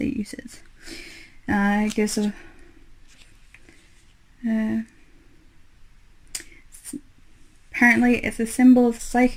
uses. It gives a apparently it's a symbol of the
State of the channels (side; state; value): both; identical; correlation 1.00